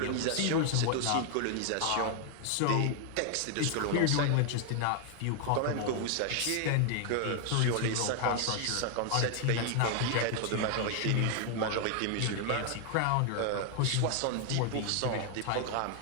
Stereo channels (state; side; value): different; both; correlation 0.00